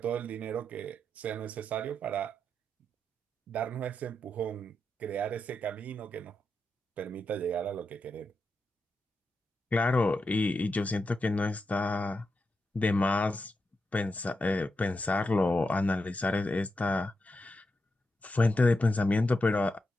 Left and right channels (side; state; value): both; normal; correlation 0.86